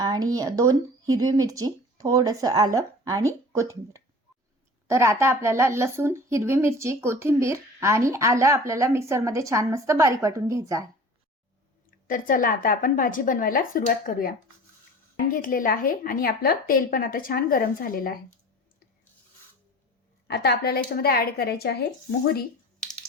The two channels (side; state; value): both; normal; correlation 0.40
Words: 2 हिरवी मिरची, थोडंसं आलं आणि कोथिंबीर। तर आता आपल्याला लसूण, हिरवी मिरची, कोथिंबीर आणि आलं आपल्याला मिक्सरमध्ये छान मस्त बारीक वाटून घ्यायचं आहे। तर चला आता आपण भाजी बनवायला सुरुवात करूया। पॅन घेतलेला आहे आणि आपलं तेल पण आता छान गरम झालेलं आहे। आता आपल्याला याच्यामध्ये ऍड करायचे आहे मोहरी,